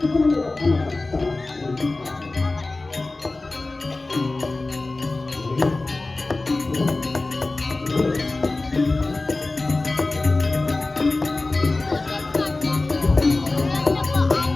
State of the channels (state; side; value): quieter; right; 3.2 dB